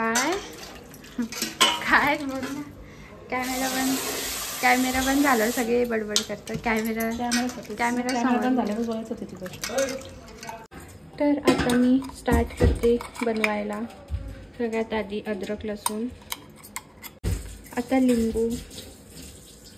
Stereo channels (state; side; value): identical; both; correlation 1.00